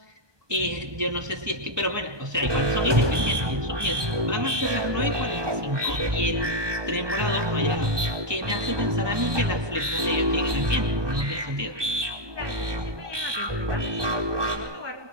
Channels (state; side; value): late; left; 1.2 ms